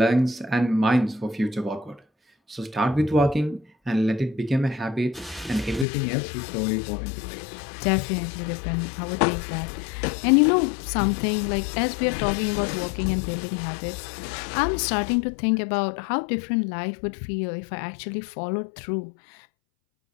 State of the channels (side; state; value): right; drops out; at 5.9 s